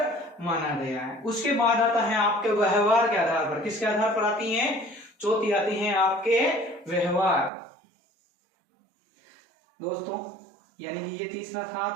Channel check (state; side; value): drops out; left; at 7.5 s